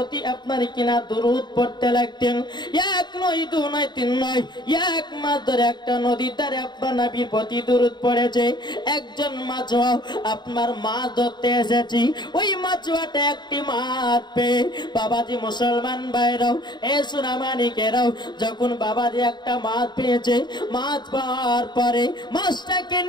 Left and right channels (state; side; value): late; right; 0.21 ms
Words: আপনার কিনা দুরূদ পড়তে লাগতেন। এক নয়, দু নয়, তিন নয়, এক মাস ধরে একটা নদীর ধারে আপনার নবীর প্রতি দুরূদ পড়েছে। একজন মাছুয়া আপনার মাছ ধরতে এসেছি, ওই মাছুয়াটা একটি মাছ পেয়ে বাবাজি মুসলমান ভাইরাও এ সোনামানিকেরাও যখন বাবাজি একটা মাছ পেয়েছে, মাছ পাওয়ার পরে মাছটাকে